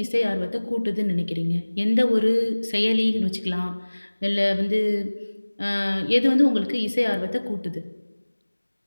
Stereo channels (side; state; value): both; inverted; correlation -1.00